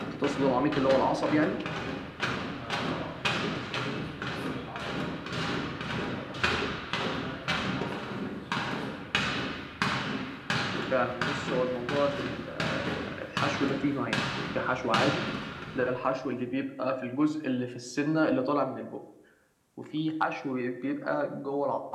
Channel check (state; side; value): identical; both; correlation 1.00